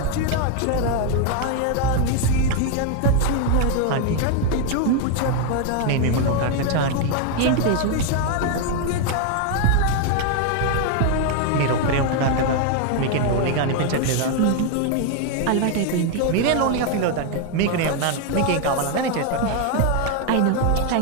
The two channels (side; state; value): both; different; correlation 0.01